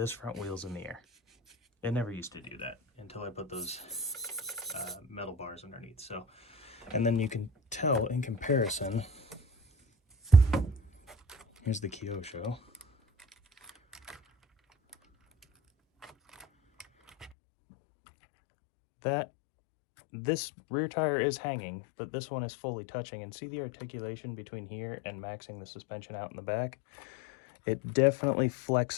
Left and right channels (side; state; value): right; drops out; at 17.3 s